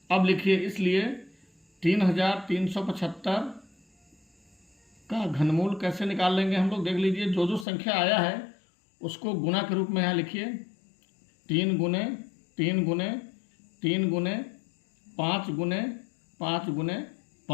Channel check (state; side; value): drops out; right; at 7.7 s